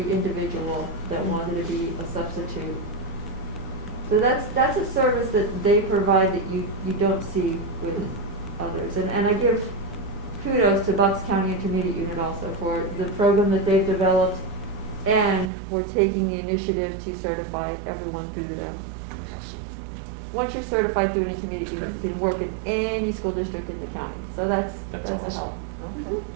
individual that wanted to be a substitute. So that's a service that they provide that you don't see with others. And I give kudos to Bucks County Intermediate Unit also for the program that they've developed, and we're taking the initiative to certify everyone through them. Once you're certified through an intermediate unit, you can work in any school district in the county. So that's a awesome. help. Okay.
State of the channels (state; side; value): drops out; left; at 15.5 s